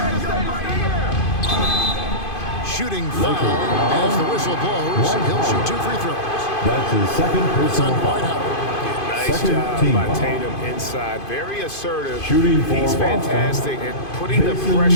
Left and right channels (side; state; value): right; late; 2.5 ms